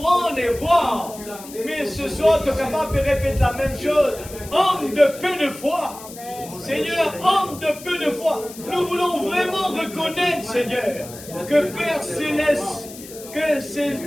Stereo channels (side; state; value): left; noise; hiss, 16 dB below the sound